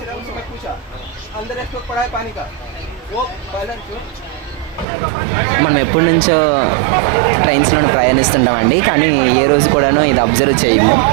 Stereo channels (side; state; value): left; drops out; at 4.9 s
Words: हैं उनसे मैं पूछा अंदर एक पड़ा है पानी का वो पहले क्यों మనం ఎప్పటి నుంచో ట్రైన్స్లో ప్రయాణిస్తున్నామండి, కానీ ఏ రోజు కూడాను ఇది అబ్జర్వ్ చేయము.